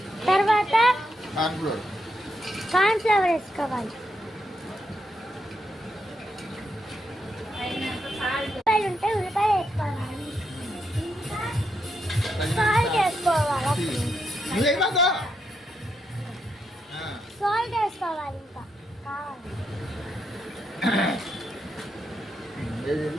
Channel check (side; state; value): both; normal; correlation 0.81